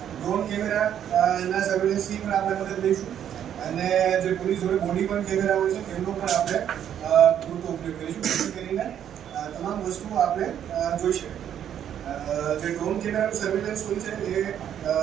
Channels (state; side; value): quieter; left; 9.7 dB